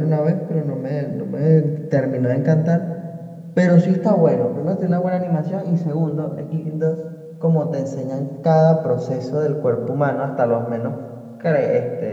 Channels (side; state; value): both; identical; correlation 1.00